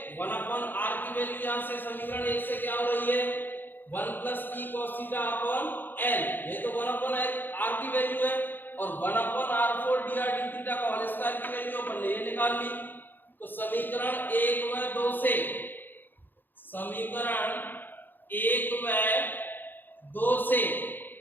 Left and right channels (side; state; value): right; late; 0.092 ms